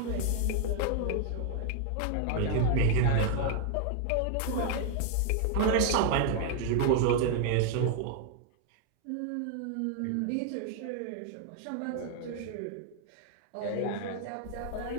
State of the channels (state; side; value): different; both; correlation 0.00